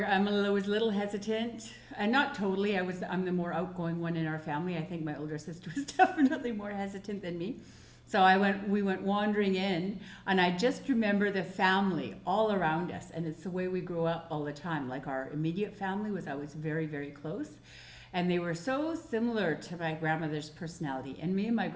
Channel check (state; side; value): identical; both; correlation 1.00